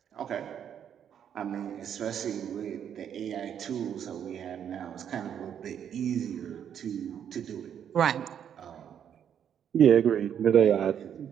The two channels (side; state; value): left; quieter; 8.9 dB